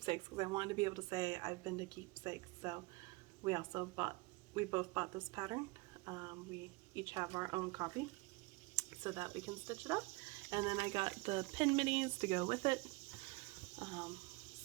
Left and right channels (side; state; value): left; quieter; 24.8 dB